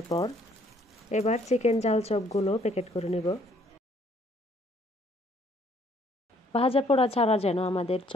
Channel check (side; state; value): both; normal; correlation 0.64